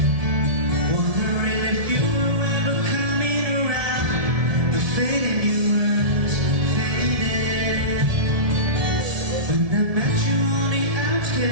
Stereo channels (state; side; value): late; left; 1.7 ms